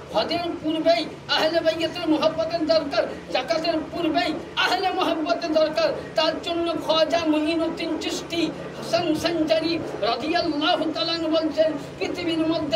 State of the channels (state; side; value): identical; both; correlation 1.00